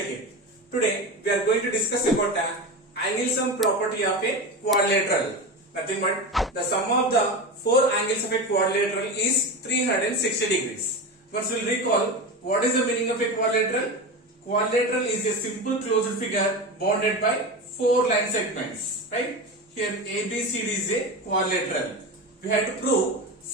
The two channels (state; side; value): normal; both; correlation 0.23